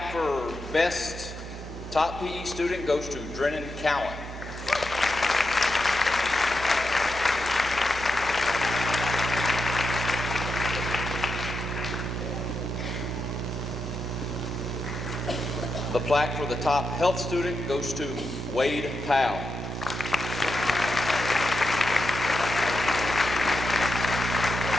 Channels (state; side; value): normal; both; correlation 0.86